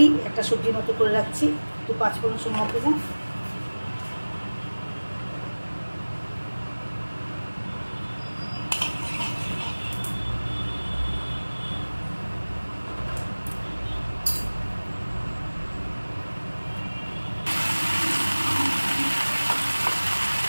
একটা সবজির মতো করে রাখছি। একটু 5 ফোড়ন সময় দেবো।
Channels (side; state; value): both; inverted; correlation -1.00